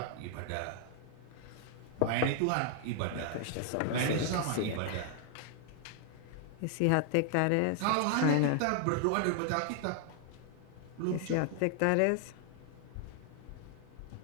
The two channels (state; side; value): different; both; correlation 0.00